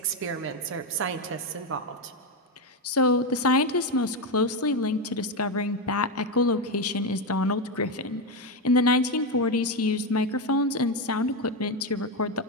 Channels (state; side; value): normal; both; correlation 0.09